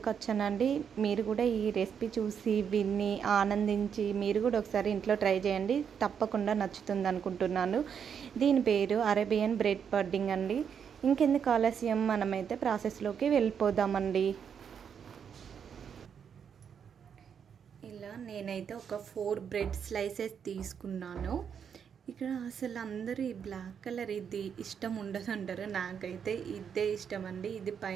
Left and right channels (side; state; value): left; quieter; 7.5 dB